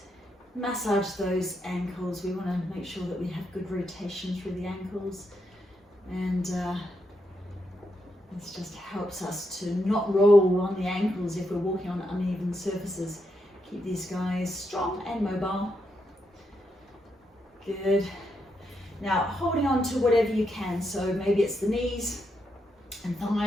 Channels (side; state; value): both; normal; correlation 0.82